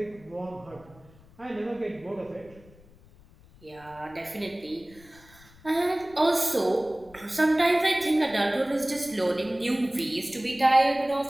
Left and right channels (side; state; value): left; noise; rumble, 25 dB below the sound